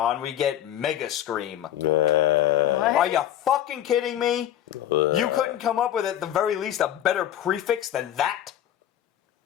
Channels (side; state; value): right; quieter; 11.5 dB